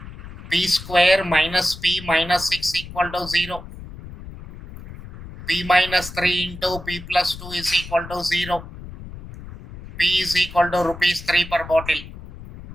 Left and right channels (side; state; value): left; noise; rumble, 14 dB below the sound